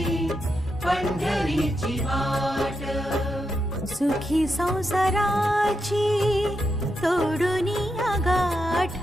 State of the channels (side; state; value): both; normal; correlation 0.85